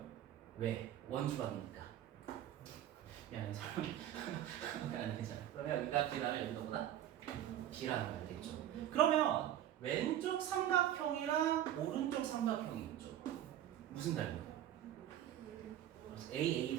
왜? 원주방이니까. 미안해, 설명. 안 괜찮아. 그러면 여기가 B라면 여기가 보다 B라는 거 알겠죠? 그러면 왼쪽 삼각형이랑 오른쪽 삼각형이 있죠. 무슨 닮음? A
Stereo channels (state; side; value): quieter; left; 11.7 dB